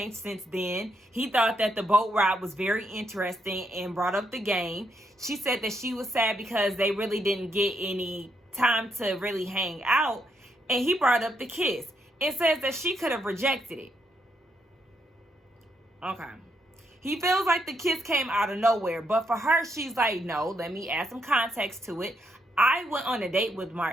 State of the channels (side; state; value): both; normal; correlation 0.77